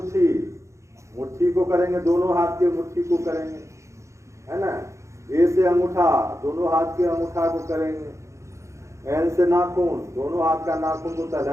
मुट्ठी को करेंगे, दोनों हाथ के मुट्ठी को करेंगे, है ना? ए से अंगूठा, दोनों हाथ के अंगूठा को करेंगे। एन से नाखून, दोनों हाथ का नाखून को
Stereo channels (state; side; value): late; left; 0.14 ms